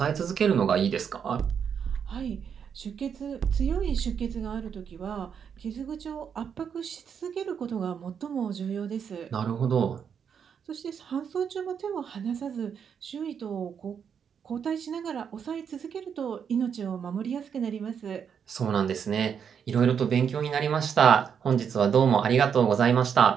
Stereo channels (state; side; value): quieter; left; 7.4 dB